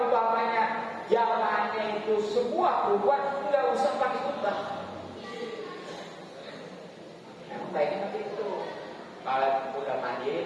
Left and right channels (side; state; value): both; identical; correlation 1.00